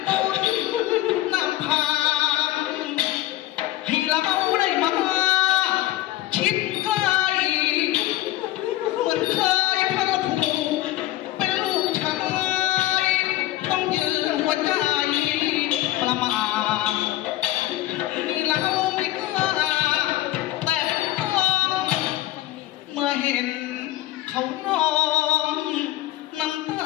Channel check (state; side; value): quieter; right; 15.6 dB